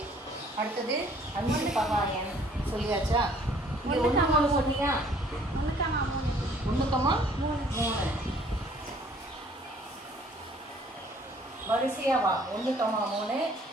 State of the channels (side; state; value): both; normal; correlation 0.58